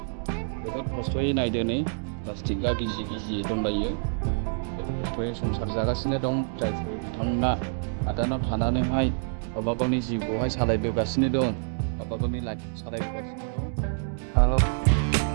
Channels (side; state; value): left; silent; 60 dB below the other